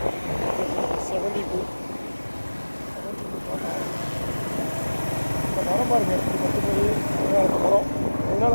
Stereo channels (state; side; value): inverted; both; correlation -1.00